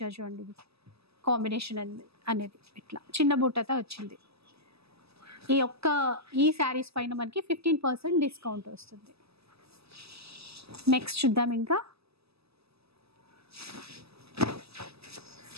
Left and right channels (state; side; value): late; left; 0.78 ms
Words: చూడండి. ఇది కాంబినేషన్ అనేది ఇట్లా చిన్న బుట్టతో వచ్చింది. ఈ శారీస్ పైన మనకి 15% డిస్కౌంట్ వస్తుంది. నెక్స్ట్ చూద్దాం. ఇంకా